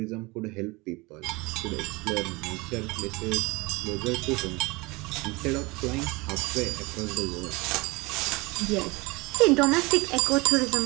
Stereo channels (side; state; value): left; quieter; 24.6 dB